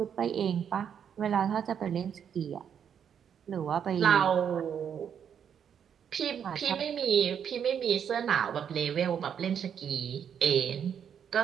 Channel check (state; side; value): quieter; left; 8.2 dB